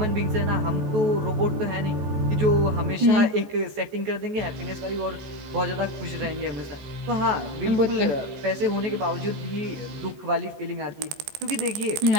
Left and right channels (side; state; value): left; late; 14 ms